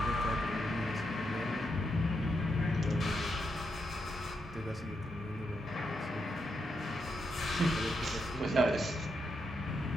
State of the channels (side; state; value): both; normal; correlation 0.82